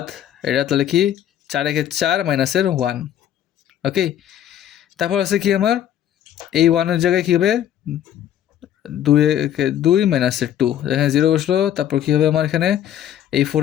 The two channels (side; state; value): right; quieter; 10.8 dB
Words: এটা তাহলে কি 4 একে 4, মাইনাসের 1। ওকে, তারপর আছে কি আমার এই 1-এর জায়গায় কী হবে 2 একে 2, মাইনাসের 2, এখানে 0 বসলো। তারপর কী হবে আমার এখানে এই